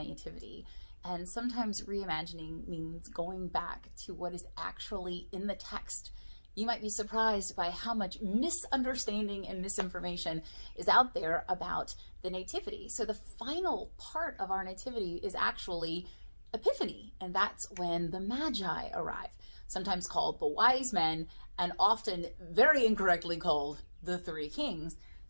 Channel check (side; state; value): both; inverted; correlation -1.00